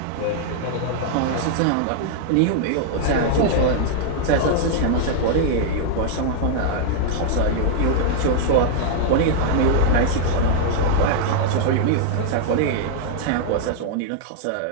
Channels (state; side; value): different; both; correlation -0.01